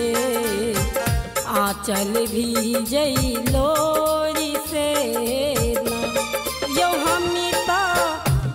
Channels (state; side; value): identical; both; correlation 1.00